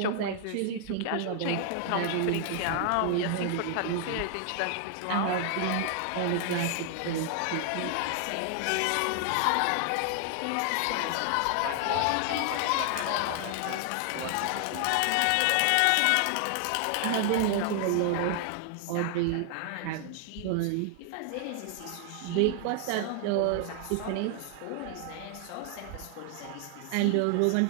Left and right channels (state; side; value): different; both; correlation 0.00